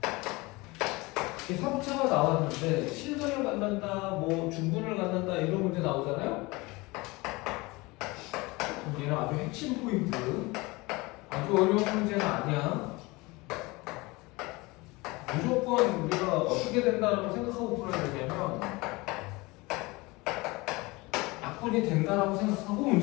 3차가 나왔는데 실근을 갖는다, 뭐 중근을 갖는다 이런 문제 나오잖아요. 얘는 아주 핵심 포인트. 아주 어려운 문제는 아니야. 무조건 우리가 어떻게 된다라고 생각하고 풀어야 되냐면 약분이 된다라고 생각하고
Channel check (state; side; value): quieter; right; 23.4 dB